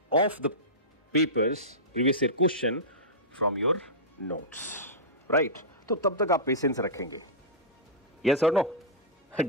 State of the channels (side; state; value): both; normal; correlation -0.15